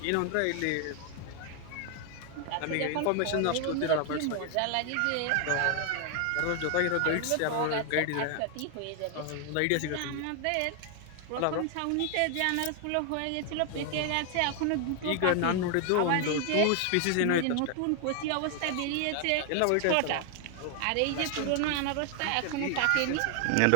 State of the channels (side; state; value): both; different; correlation 0.00